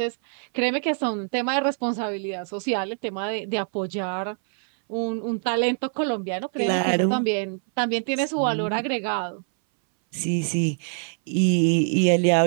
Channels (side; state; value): left; silent; 61 dB below the other